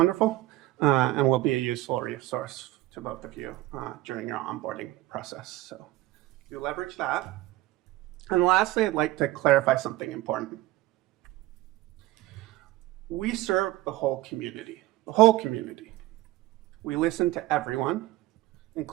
and will be a useful resource to both of you during your onboarding process. So you leverage that. And lastly, I'd like to clarify something important. We serve the whole community, the whole community. We listen to everyone,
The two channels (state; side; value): quieter; left; 16.7 dB